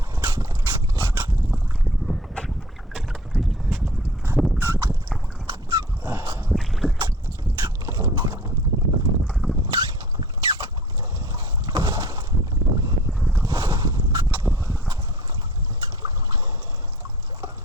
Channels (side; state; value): both; normal; correlation 0.47